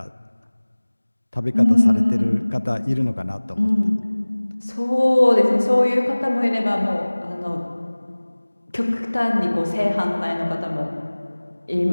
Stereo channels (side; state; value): both; inverted; correlation -1.00